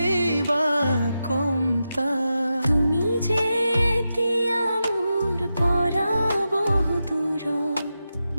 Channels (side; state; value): both; inverted; correlation -0.89